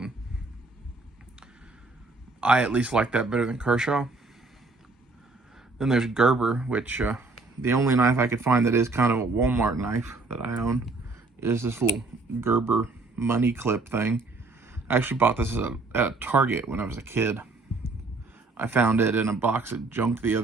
I at least like that better than Kershaw. Then there's Gerber, which the only knife I could find that is kind of a Walmart knife that I own is this little Gerber money clip thing. I actually bought this at a Target when I was a kid. I found it in a box of junk the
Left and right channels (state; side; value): quieter; left; 3.4 dB